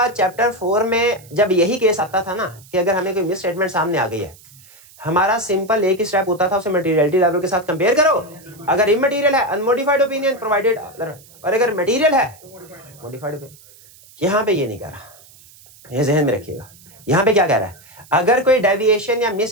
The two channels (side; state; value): right; noise; hiss, 24 dB below the sound